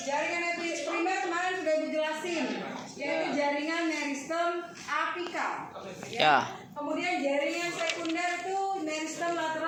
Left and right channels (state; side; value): identical; both; correlation 1.00